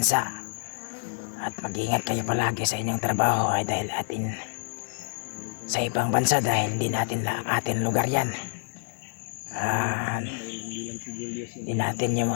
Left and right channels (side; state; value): right; silent; digital silence